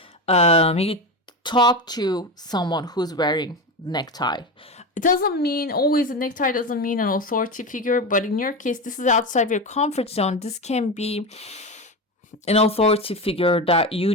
maybe talk to someone who's wearing necktie. It doesn't mean always a necktie doesn't mean an authority figure, but in your case, this is outside your comfort zone. This can be an authority figure that you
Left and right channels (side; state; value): both; normal; correlation 0.20